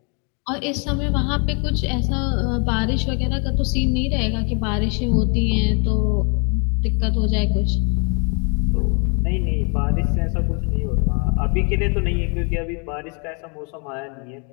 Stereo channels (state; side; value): quieter; right; 35.6 dB